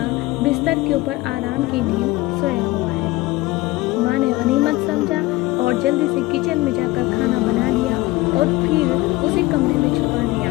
بستر کے اوپر آرام کی نیند سویا ہوا ہے۔ ماں نے غنیمت سمجھا اور جلدی سے کچن میں جا کر کھانا بنا لیا اور پھر اسے کمرے میں چھپا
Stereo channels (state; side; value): quieter; right; 19.7 dB